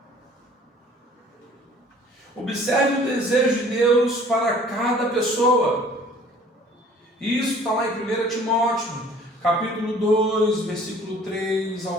Observe o desejo de Deus para cada pessoa. Isso está lá em 1 Timóteo, capítulo 2, versículo 3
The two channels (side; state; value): both; normal; correlation 0.52